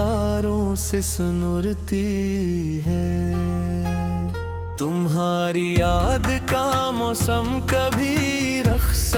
से सुनुरती है। तुम्हारी याद का मौसम कभी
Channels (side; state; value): both; identical; correlation 1.00